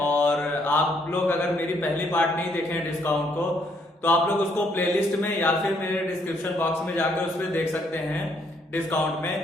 आप लोग अगर मेरी पहली पार्ट नहीं देखे हैं डिस्काउंट को तो आप लोग उसको प्लेलिस्ट में या फिर मेरे डिस्क्रिप्शन बॉक्स में जाकर उसमें देख सकते हैं डिस्काउंट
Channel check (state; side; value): normal; both; correlation 0.70